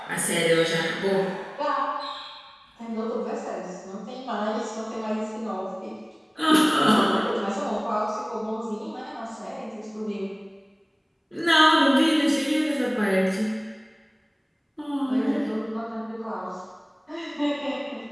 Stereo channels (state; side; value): identical; both; correlation 1.00